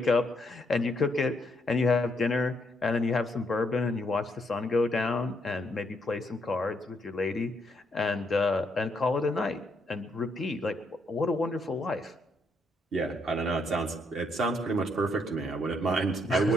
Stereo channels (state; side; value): normal; both; correlation 0.74